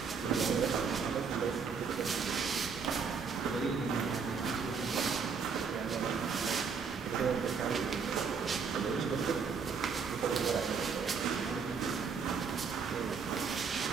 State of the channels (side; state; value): left; quieter; 5.7 dB